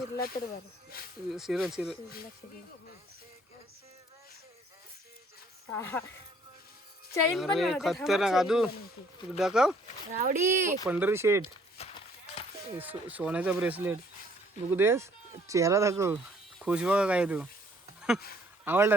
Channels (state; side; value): normal; both; correlation 0.61